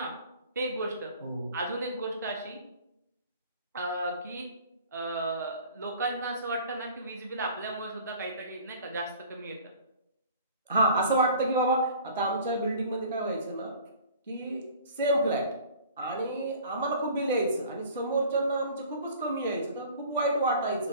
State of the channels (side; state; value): both; inverted; correlation -0.47